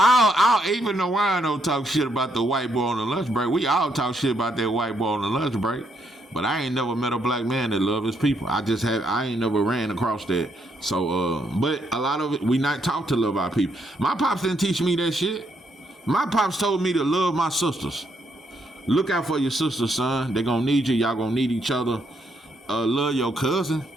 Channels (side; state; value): both; normal; correlation 0.75